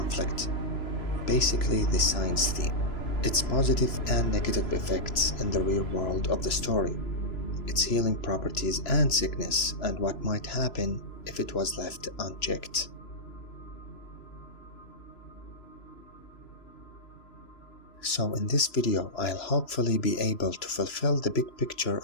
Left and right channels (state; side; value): late; right; 3.0 ms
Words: basically the science theme, its positive and negative effects in the real world of the story, its healing properties and sickness, and what might happen if it was left unchecked. So in this video, I'll hopefully be able to fulfill the big picture